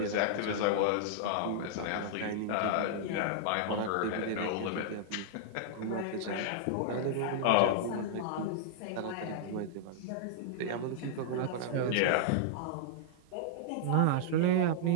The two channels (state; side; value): different; both; correlation -0.02